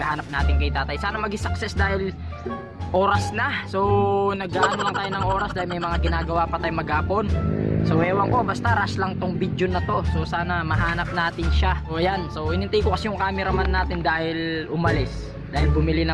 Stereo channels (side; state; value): both; identical; correlation 1.00